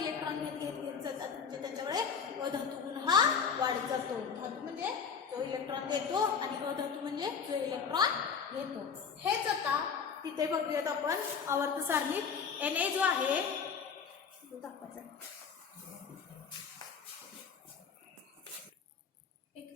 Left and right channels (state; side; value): quieter; right; 6.3 dB